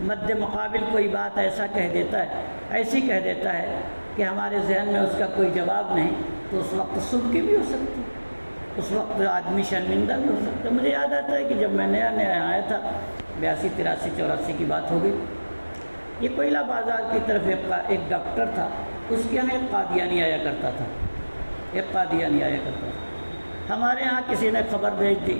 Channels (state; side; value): inverted; both; correlation -1.00